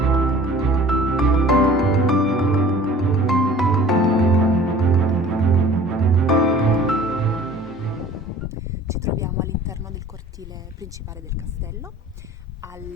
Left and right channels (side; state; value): both; normal; correlation 0.47